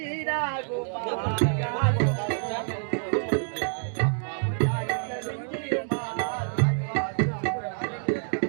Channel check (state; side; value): silent; left; 58 dB below the other